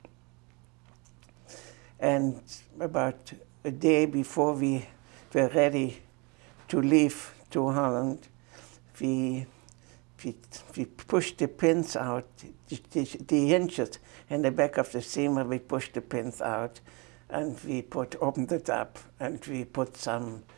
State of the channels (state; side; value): quieter; left; 29.0 dB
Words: And about a day before we were ready to leave to Holland, we pushed the pins out, the hinges in the back of the steamer, we pushed the pins out and we opened it up and we put some